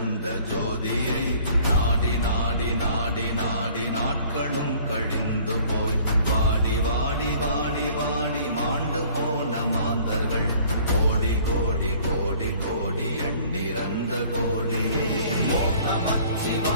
ஜோதியை நாடி நாடி நாடி நாடி நாட்களும் கழிந்து போய் வாடி வாடி வாடி வாடி மாண்டு போன மாந்தர்கள் கோடி கோடி கோடி கோடி எண்ணிறந்த கோடி. ஓம்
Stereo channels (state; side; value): inverted; both; correlation -0.54